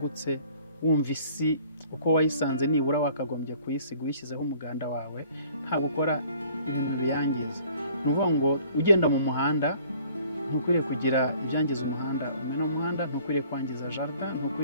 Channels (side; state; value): both; inverted; correlation -0.56